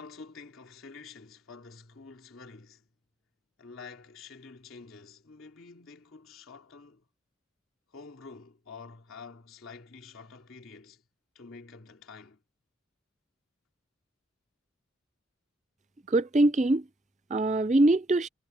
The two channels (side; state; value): both; normal; correlation 0.73